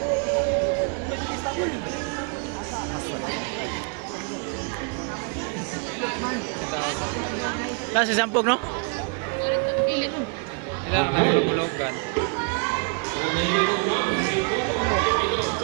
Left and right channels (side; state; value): left; quieter; 39.0 dB